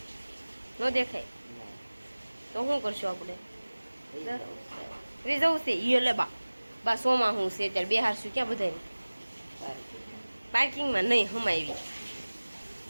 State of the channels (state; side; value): inverted; both; correlation -1.00